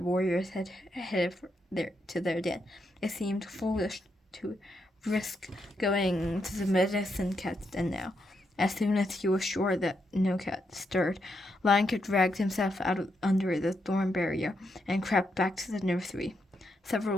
had headed to their den. It seemed foolish to risk going to the medicine cat's den now. As soon as he was sure that no cat stirred, Lion Kit dragged himself out under the thorn barrier and crept back to the nursery.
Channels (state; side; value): normal; both; correlation 0.81